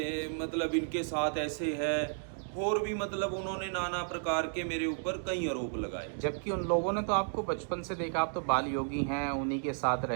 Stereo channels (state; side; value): silent; left; digital silence